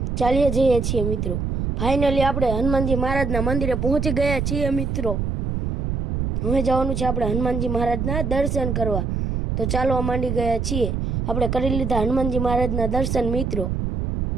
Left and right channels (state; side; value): noise; right; rumble, 2 dB below the sound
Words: ચાલ્યા જઈએ છીએ મિત્રો। ફાઇનલી આપણે હનુમાનજી મહારાજના મંદિરે પહોંચી ગયા છીએ મિત્રો। હવે જવાનું છે આપણે હનુમાનજી મહારાજના દર્શન કરવા। તો ચાલવા માંડી ગયા છીએ। આપણે કરી લીધા હનુમાનજી મહારાજના દર્શન મિત્રો।